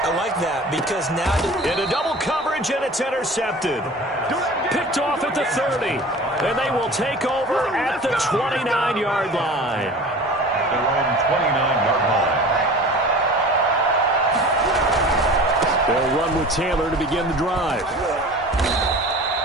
I like that because now... Into double coverage, and it's intercepted. Picked off at the 30. And they will take over at the 29-yard line. They're on the 29-yard line. They'll run with Taylor to begin the drive.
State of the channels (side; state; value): both; normal; correlation 0.40